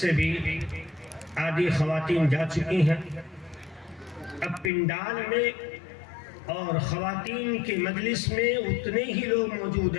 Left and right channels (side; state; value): right; drops out; at 4.7 s